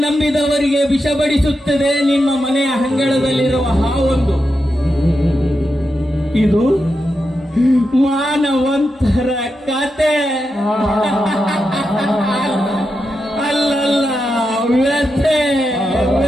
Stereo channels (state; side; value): normal; both; correlation 0.87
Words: ನಂಬಿದವರಿಗೆ ವಿಷ ಬಡಿಸುತ್ತದೆ ನಿಮ್ಮ ಮನೆಯ ಅಂಗಳದಲ್ಲಿರುವ ಹಾವೊಂದು. ಇದು ಮಾನವಂತರ ಕತೆ ಅಲ್ಲಲ್ಲ, ವ್ಯಥೆ